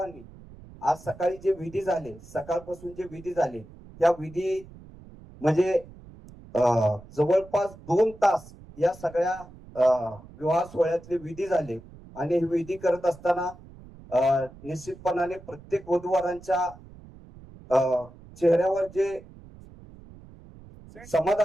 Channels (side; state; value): right; noise; rumble, 20 dB below the sound